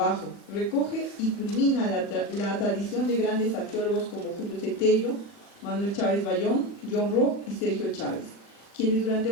Recoge y culmina la tradición de grandes arqueólogos como Julio Cetello, Manuel Chávez Bayón, John Rock y Sergio Chávez, quienes durante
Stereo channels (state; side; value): late; right; 40 ms